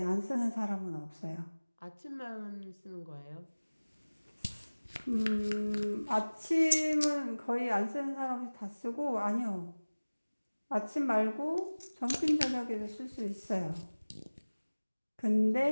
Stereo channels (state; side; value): inverted; both; correlation -1.00